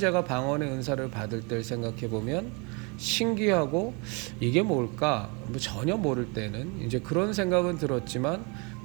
방언의 은사를 받을 때를 생각해 보면 신기하고 이게 뭘까 전혀 모를 때는 이제 그런 생각은 들었지만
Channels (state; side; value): quieter; left; 31.4 dB